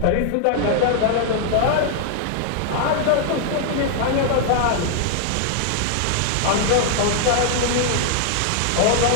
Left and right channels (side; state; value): both; different; correlation -0.01